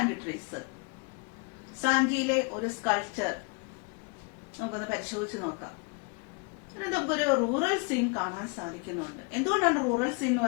trees. സാഞ്ചിയിലെ ഒരു sculpture നമുക്കൊന്ന് പരിശോധിച്ച് നോക്കാം. നമുക്കൊരു rural scene കാണാൻ സാധിക്കുന്നുണ്ട്. എന്തുകൊണ്ടാണ് rural scene എന്ന്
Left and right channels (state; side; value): quieter; right; 31.9 dB